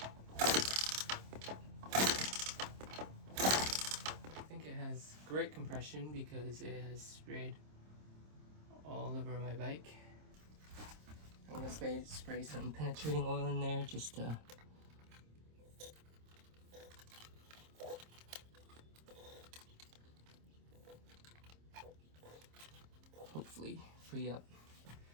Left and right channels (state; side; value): late; left; 26 ms